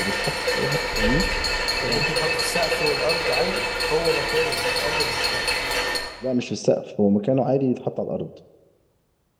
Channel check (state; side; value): identical; both; correlation 1.00